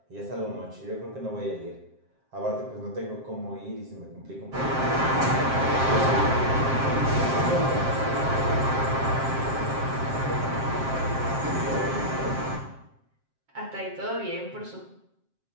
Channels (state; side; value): late; left; 7.6 ms